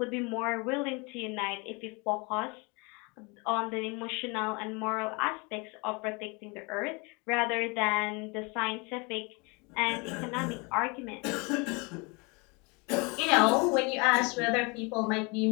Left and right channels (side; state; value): right; quieter; 29.4 dB